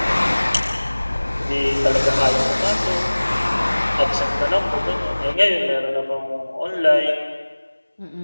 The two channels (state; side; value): inverted; both; correlation -1.00